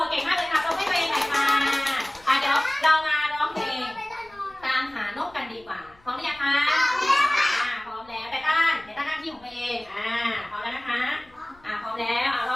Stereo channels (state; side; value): noise; left; rumble, 29 dB below the sound